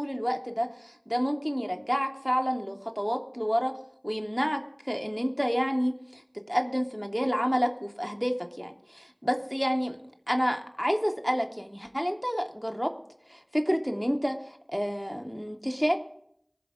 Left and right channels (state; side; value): identical; both; correlation 1.00